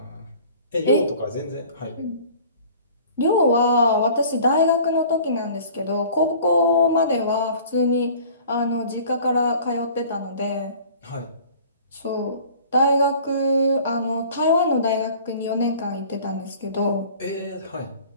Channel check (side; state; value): both; inverted; correlation -0.48